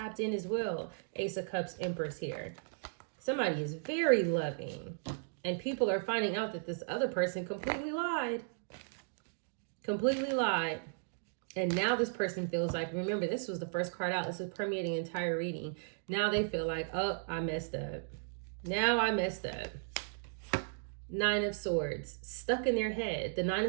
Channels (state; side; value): silent; left; digital silence